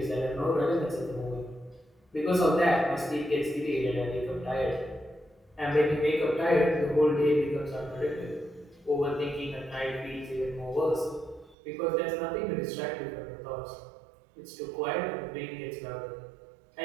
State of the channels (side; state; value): left; drops out; at 11.6 s